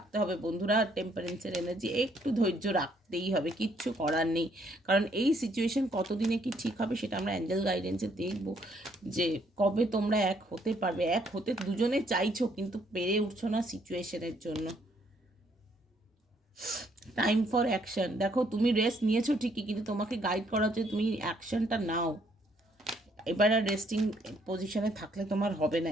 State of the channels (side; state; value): both; normal; correlation 0.68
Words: হবে বন্ধুরা, টেম্পারেন্সের এনার্জি একটু ধৈর্য রাখতেই হবে, কিচ্ছু করার নেই, কারণ এই সিচুয়েশন কতদিনে কি ঠিক হবে সেটা আমরা অ্যাঞ্জেল গাইডেন্সে দেখবো, যে কবে তোমরা এক হতে পারবে, এক হতে দুজনে চাইছো কিন্তু পেরে উঠছো না সিচুয়েশনের জন্য। টাইম ফর অ্যাকশন, দেখো তুমি রেস্ট নিয়েছো ঠিকই, কিন্তু তোমাকে গাইড করা হচ্ছে তুমি অ্যাকশনটা নাও, এবার আর রেস্টিং পজিশনে থাকলে তোমার হবে না,